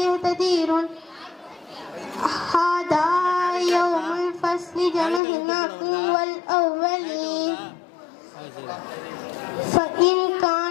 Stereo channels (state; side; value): drops out; right; at 5.2 s